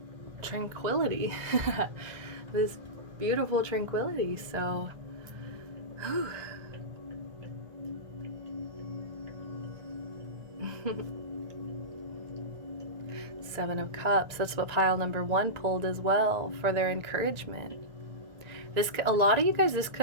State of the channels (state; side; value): late; left; 1.9 ms